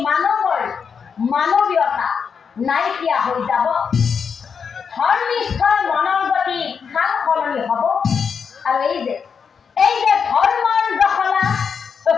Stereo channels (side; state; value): right; quieter; 6.3 dB